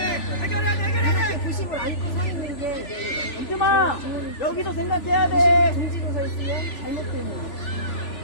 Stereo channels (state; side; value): late; right; 3.4 ms